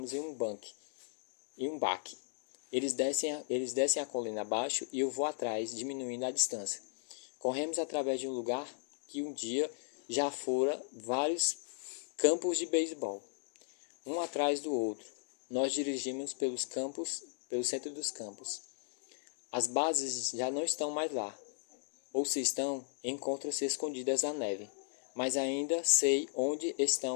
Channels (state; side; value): silent; right; digital silence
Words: em um baque. Eles descem a colina abaixo e eu vou atrás, diminuindo a distância. Corremos através de um lugar que um dia já fora vários campos de beisebol, um atrás do outro. Nós dirigimos pelo centro dos campos. As bases já não estão mais lá, ou se estão, encontram-se escondidas na neve. Mas ainda sei onde